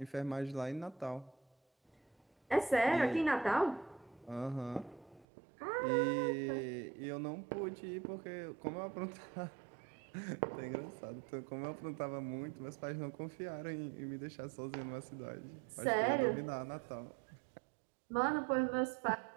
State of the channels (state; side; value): drops out; left; at 5.2 s